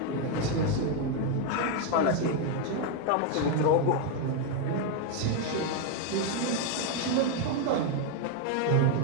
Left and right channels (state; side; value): different; both; correlation 0.01